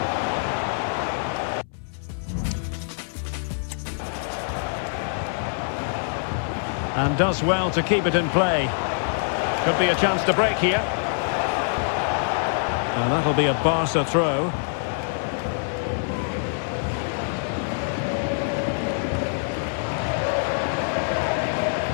And does well to keep it in play. Could be a chance to break here. And that'll be a Barca throw.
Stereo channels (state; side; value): silent; right; 59 dB below the other